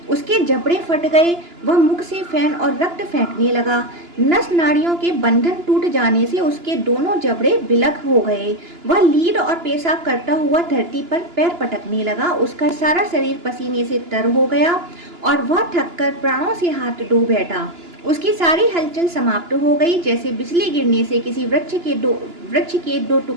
उसके जबड़े फट गए, वह मुख से फैन और रक्त फेंकने लगा। नस नाड़ियों के बंधन टूट जाने से उसके दोनों जबड़े बिलख हो गए। वह लीड और पेशाब करता हुआ धरती पर पैर पटकने लगा। उसका सारा शरीर पसीने से तर हो गया और वह थककर प्राणों से हाथ धो बैठा। उसकी सारी हलचल समाप्त हो गई। जैसे बिजली गिरने से किसी वृक्ष के दो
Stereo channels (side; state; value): left; late; 2.9 ms